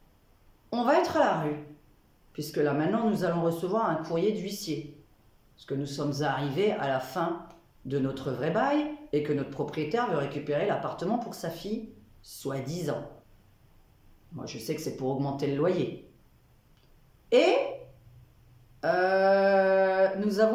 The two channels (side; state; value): both; identical; correlation 1.00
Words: On va être à la rue, puisque là maintenant nous allons recevoir un courrier d'huissier. Parce que nous sommes arrivés à la fin de notre vrai bail et que notre propriétaire veut récupérer l'appartement pour sa fille, soi-disant. Moi, je sais que c'est pour augmenter le loyer. Et nous